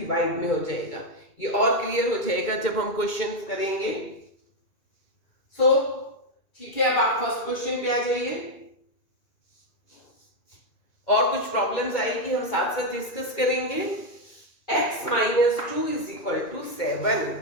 में हो जाएगा। ये और क्लियर हो जाएगा जब हम क्वेश्चन करेंगे। सो ठीक है, अब आप फर्स्ट क्वेश्चन पे आ जाइए। और कुछ प्रॉब्लम्स आएगी, हम साथ साथ डिस्कस करेंगे। x minus 2 is equal to 7.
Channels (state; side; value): late; right; 2.3 ms